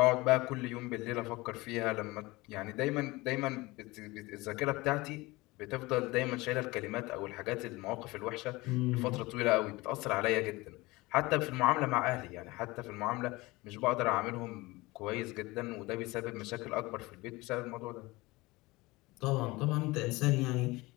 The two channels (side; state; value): right; quieter; 21.7 dB